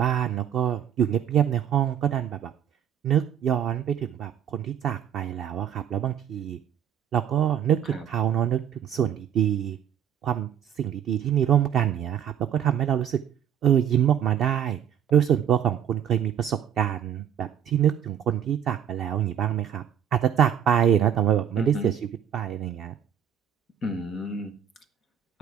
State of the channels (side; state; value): left; quieter; 9.2 dB